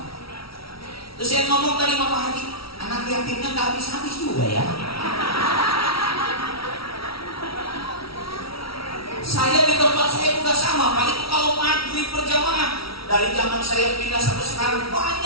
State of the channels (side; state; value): right; late; 0.75 ms